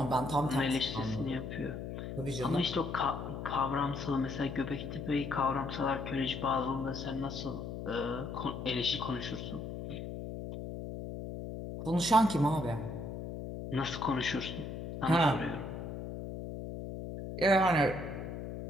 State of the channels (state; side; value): noise; left; hum, 7 dB below the sound